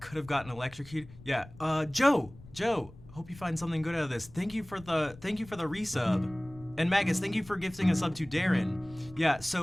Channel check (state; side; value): noise; left; rumble, 20 dB below the sound